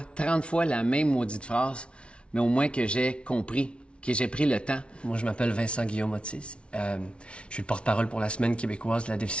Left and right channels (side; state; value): right; late; 0.059 ms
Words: 30 fois la même maudite phrase, mais au moins que j'ai compris, que j'ai pris le temps. Moi, je m'appelle Vincent Guillaume-Otis. Je suis le porte-parole pour la Semaine québécoise de la